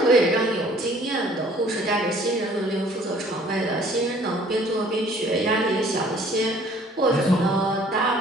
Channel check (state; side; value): normal; both; correlation 0.56